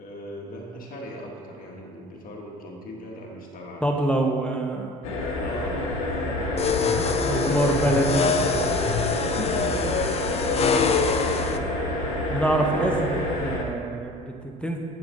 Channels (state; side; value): normal; both; correlation 0.42